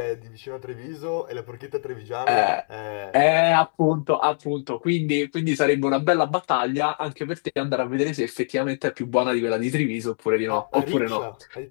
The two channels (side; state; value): right; silent; digital silence